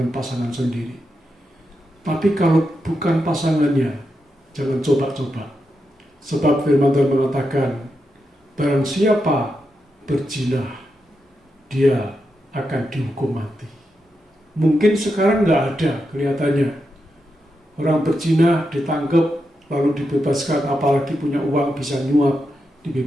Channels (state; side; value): normal; both; correlation 0.86